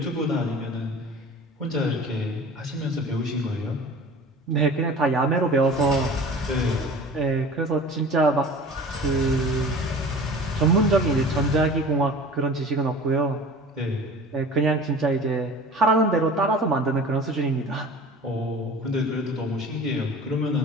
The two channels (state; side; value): normal; both; correlation 0.40